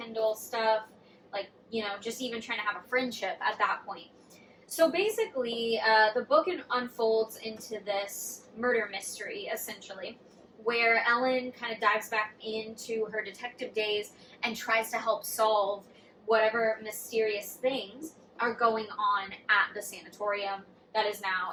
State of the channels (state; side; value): identical; both; correlation 1.00